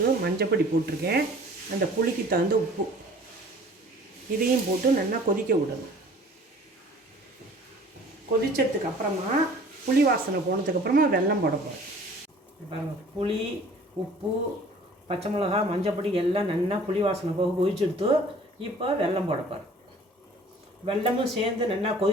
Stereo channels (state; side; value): normal; both; correlation 0.50